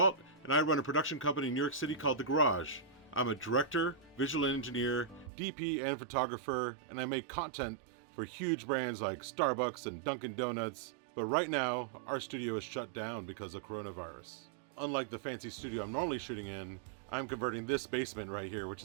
and I run a production company in New York City called The Garage. I'm a director, visual engineer, DP, and photographer, and I make content for huge brands like Starbucks and Dunkin' Donuts. But right now, our studio is shut down because of coronavirus. Unlike the fancy studio I'm normally shooting in, I'm converting this basement right here, which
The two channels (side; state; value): left; drops out; at 5.3 s